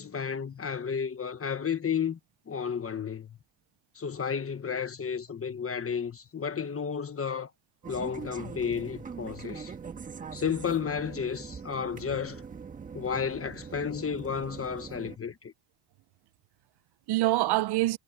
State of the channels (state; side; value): normal; both; correlation 0.07